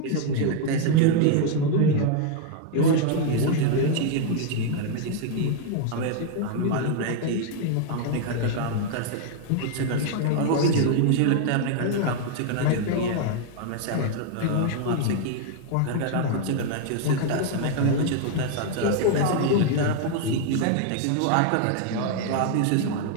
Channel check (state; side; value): different; both; correlation 0.00